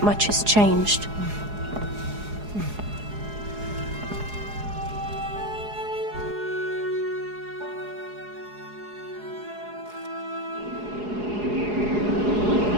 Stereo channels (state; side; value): late; left; 4.8 ms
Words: much has changed.